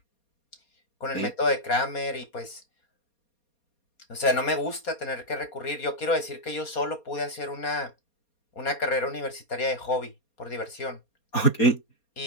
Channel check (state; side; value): late; right; 4.2 ms